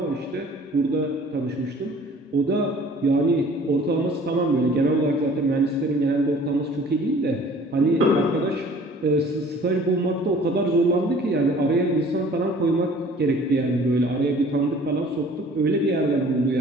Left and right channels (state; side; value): normal; both; correlation 0.50